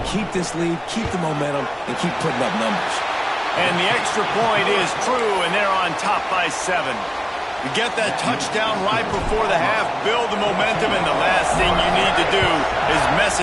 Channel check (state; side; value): identical; both; correlation 1.00